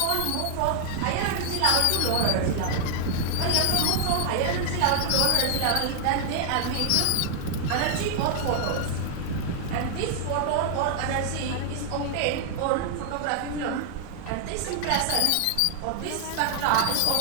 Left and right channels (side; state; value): both; different; correlation 0.00